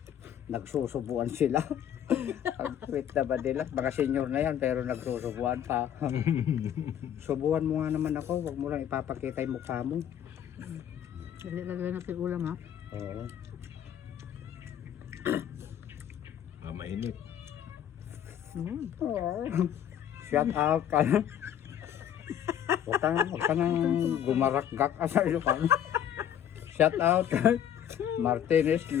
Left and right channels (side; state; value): right; quieter; 9.9 dB